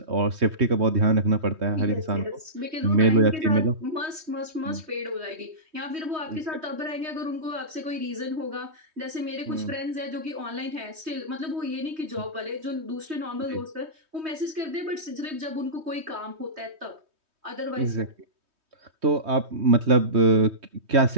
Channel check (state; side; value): late; left; 3.2 ms